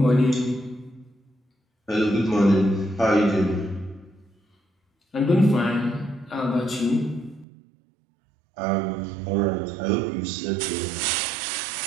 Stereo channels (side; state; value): left; drops out; at 7.5 s